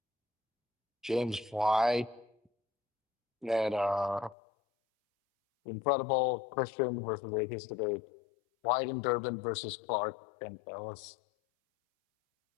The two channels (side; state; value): right; drops out; at 4.4 s